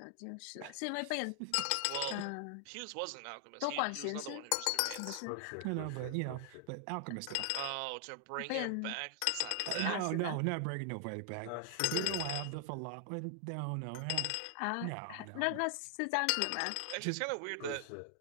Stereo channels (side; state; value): both; different; correlation 0.00